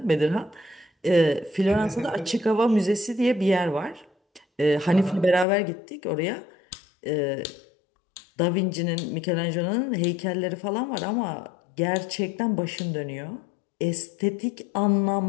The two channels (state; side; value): drops out; right; at 5.5 s